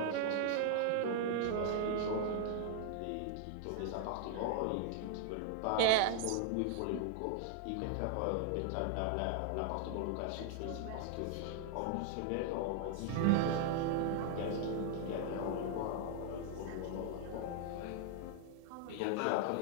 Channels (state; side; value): different; both; correlation 0.00